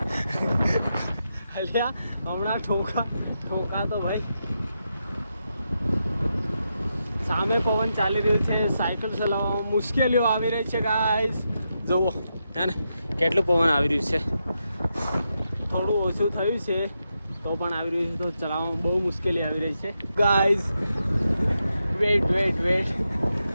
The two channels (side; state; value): both; inverted; correlation -0.85